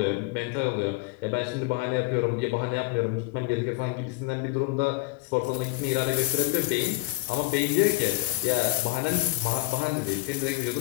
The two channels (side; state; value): right; quieter; 20.5 dB